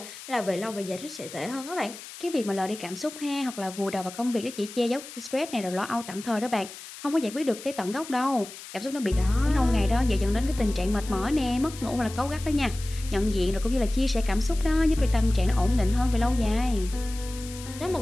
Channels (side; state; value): left; noise; hiss, 14 dB below the sound